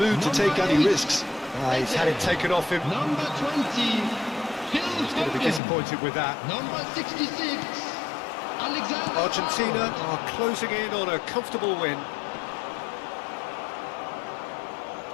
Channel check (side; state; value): right; drops out; at 5.6 s